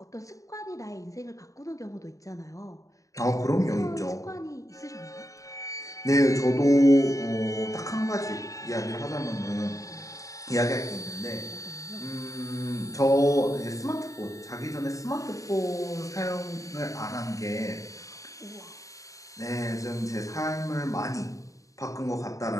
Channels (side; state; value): right; late; 0.16 ms